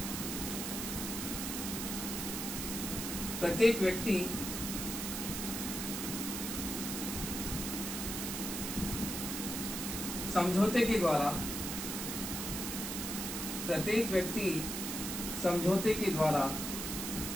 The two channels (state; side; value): noise; right; hiss, 4 dB below the sound